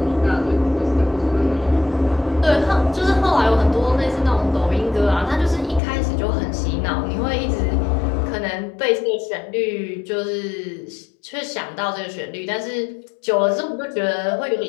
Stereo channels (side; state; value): right; drops out; at 5.8 s